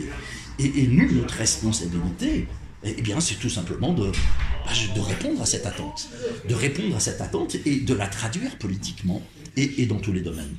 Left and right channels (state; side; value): identical; both; correlation 1.00